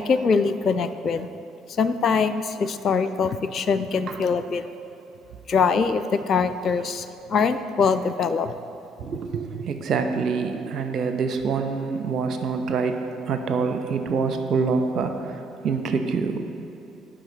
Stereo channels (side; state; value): both; normal; correlation 0.67